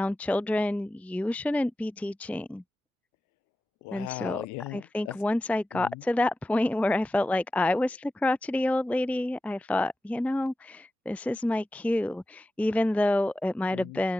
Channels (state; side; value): normal; both; correlation 0.94